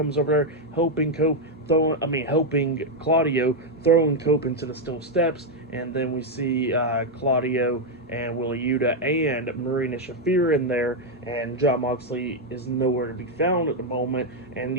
over there, helping Claudio throwing Cope into the steel steps, and then we see Claudio and Willa Yuta and Marina Shafir in there, and Jon Moxley is nowhere to be found at the moment. And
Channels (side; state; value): both; normal; correlation 0.02